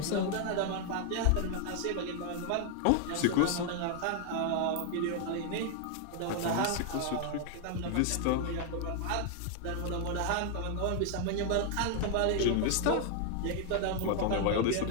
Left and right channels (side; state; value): both; different; correlation 0.00